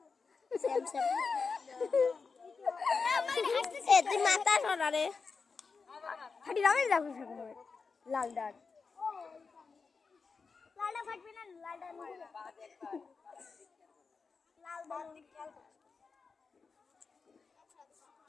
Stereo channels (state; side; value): quieter; right; 4.9 dB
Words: তুই মাথা সরা রে ফাটি দামে যাবো লাল ডাল লালটা ফাটবে না লালটা লাল